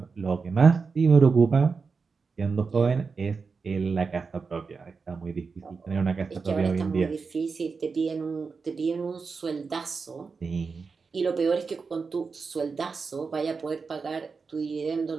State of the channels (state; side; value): quieter; left; 4.9 dB